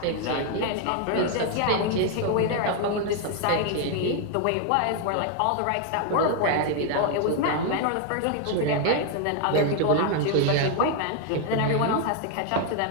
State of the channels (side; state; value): both; different; correlation 0.00